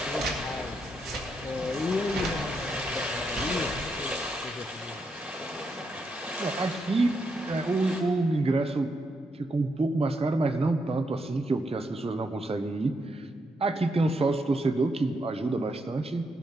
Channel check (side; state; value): both; normal; correlation 0.81